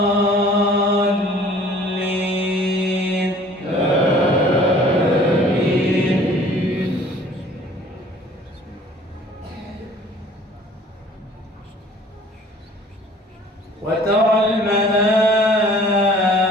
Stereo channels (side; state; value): both; normal; correlation 0.52